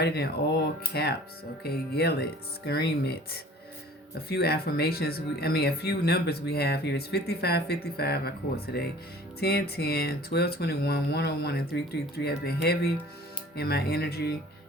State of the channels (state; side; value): normal; both; correlation 0.47